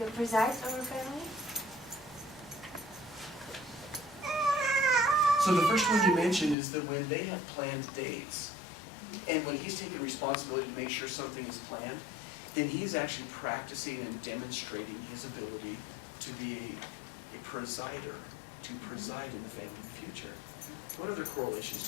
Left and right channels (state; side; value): drops out; right; at 6.6 s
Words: presides over family. So the first one you mentioned is that when they have planned dates, and when he's taking responsibility to make sure something is planned, then he's actually practicing and demonstrating his ability to be a presider, to preside in the family future. What other correlations